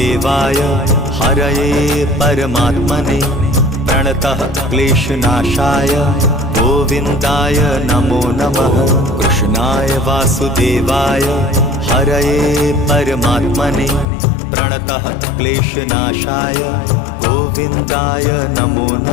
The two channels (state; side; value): drops out; right; at 14.1 s